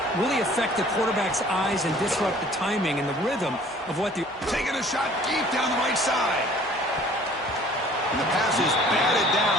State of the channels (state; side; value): normal; both; correlation 0.52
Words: really affect the quarterback's eyes and disrupt the timing and the rhythm of what the... Taking a shot deep down the right side. And the pass is batted